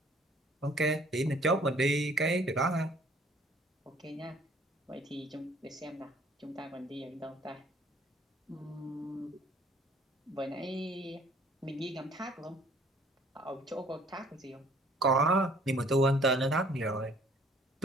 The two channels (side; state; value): both; normal; correlation 0.57